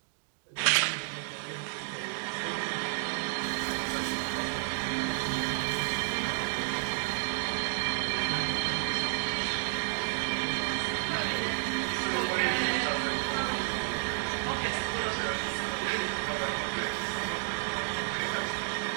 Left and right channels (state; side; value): silent; left; digital silence